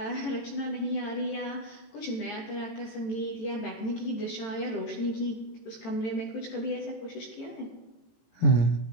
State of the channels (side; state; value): right; late; 18 ms